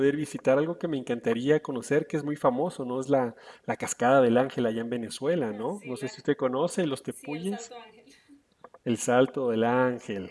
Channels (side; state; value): both; identical; correlation 1.00